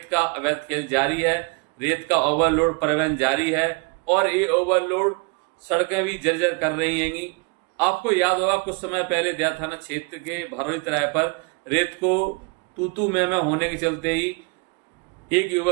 का अवैध खेल जारी है, रेत का ओवरलोड परिवहन जारी है, और ये ओवरलोड सड़कें भी जर्जर कर रही हैंगी। आपको याद होगा कुछ समय पहले दया थाना क्षेत्र के भरौली तराई पर रेत को तू मैं होने के चलते ही एक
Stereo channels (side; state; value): left; quieter; 31.7 dB